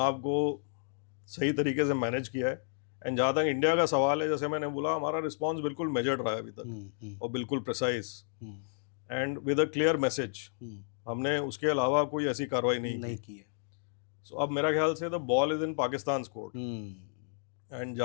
को सही तरीके से मैनेज किया है। एंड जहाँ तक इंडिया का सवाल है, जैसे मैंने बोला, हमारा रिस्पॉन्स बिल्कुल मेजर्ड रहा है अभी तक, और बिल्कुल precise and with a clear message. हमने उसके अलावा कोई ऐसी कार्रवाई नहीं की है। सो अब मेरा ख्याल से the ball is in Pakistan court. And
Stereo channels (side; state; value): right; silent; digital silence